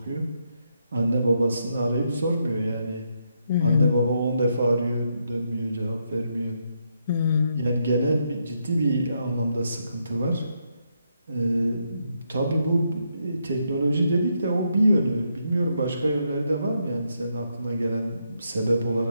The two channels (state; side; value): inverted; both; correlation -0.79